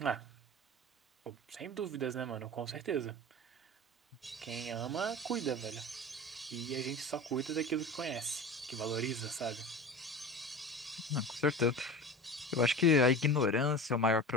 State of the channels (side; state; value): both; normal; correlation 0.33